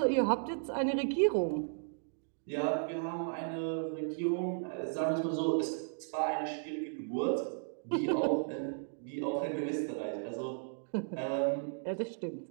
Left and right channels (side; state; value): left; silent; digital silence